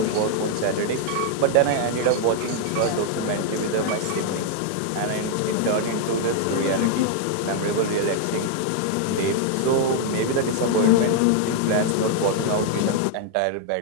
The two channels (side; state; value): both; different; correlation 0.00